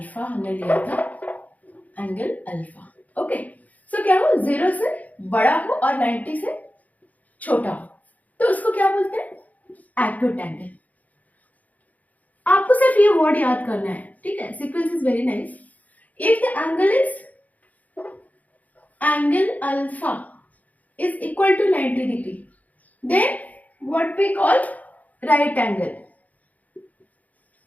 हमने लिया था, एंगल अल्फा. ओके. सो क्या हो? 0 से बड़ा हो और 90 से छोटा हो तो उसको क्या बोलते हैं? Acute angle. सिर्फ ये वर्ड याद करना है, ठीक है. Sequence is very nice. If the angle is angle alpha is equal to 90 degree, then what we call right angle.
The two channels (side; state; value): right; late; 0.076 ms